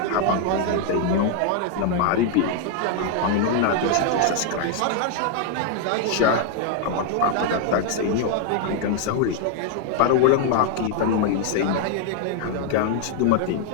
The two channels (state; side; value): different; both; correlation 0.00